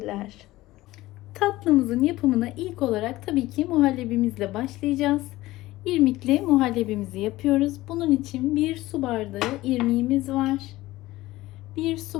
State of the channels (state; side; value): quieter; right; 17.6 dB